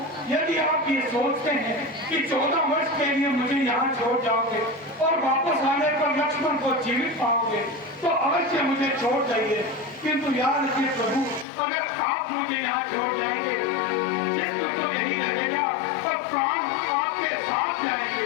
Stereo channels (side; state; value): right; drops out; at 11.5 s